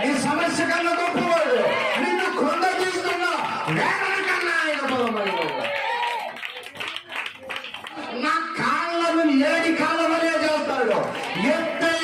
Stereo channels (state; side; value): identical; both; correlation 1.00